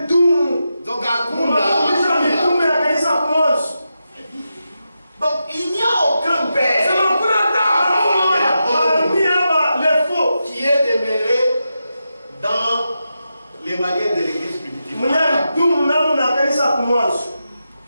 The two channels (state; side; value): inverted; both; correlation -0.88